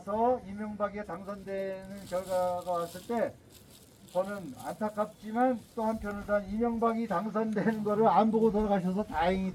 이명박이 당선되는 결과가 왔을 때 저는 안타깝지만 또 한편으로는 이명박이 당선되는 거를 안 보고 돌아가셔서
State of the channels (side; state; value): both; identical; correlation 1.00